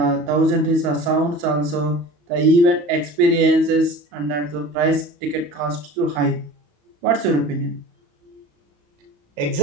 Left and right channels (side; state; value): left; late; 34 ms